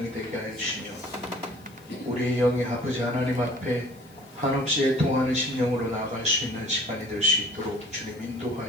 되게 하여 주시며, 우리의 영이 아버지 하나님 앞에 한없이 애통하는 심령으로 나아갈 수 있는 시간이 될 수 있도록 주님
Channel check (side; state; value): left; noise; hiss, 27 dB below the sound